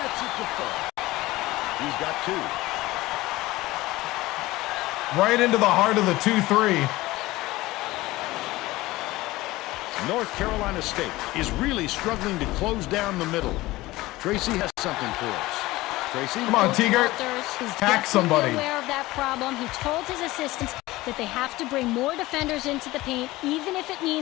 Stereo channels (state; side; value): quieter; right; 18.8 dB